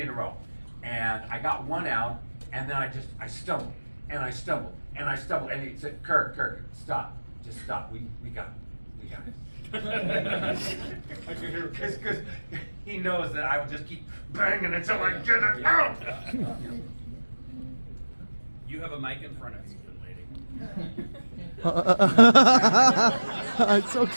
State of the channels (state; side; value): inverted; both; correlation -1.00